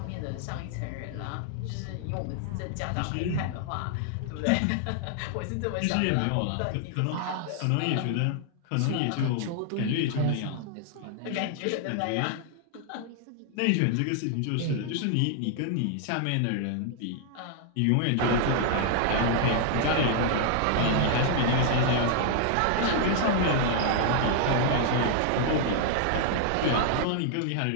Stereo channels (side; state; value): both; different; correlation 0.00